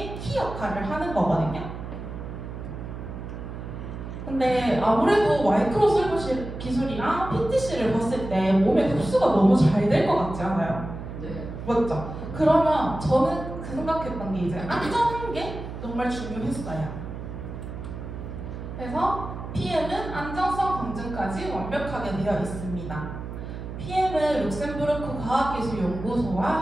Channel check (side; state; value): right; noise; hum, 9 dB below the sound